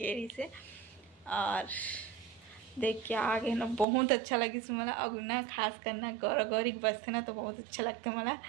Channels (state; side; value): drops out; left; at 3.9 s